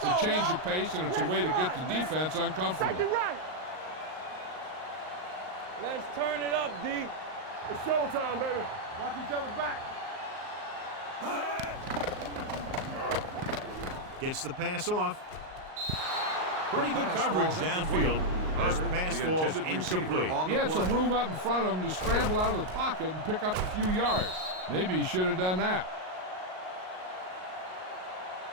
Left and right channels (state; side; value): late; left; 38 ms